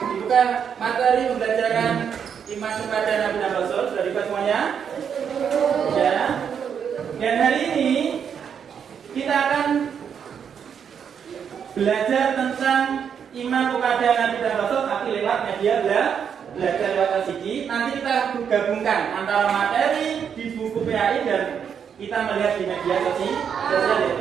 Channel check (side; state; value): left; quieter; 7.6 dB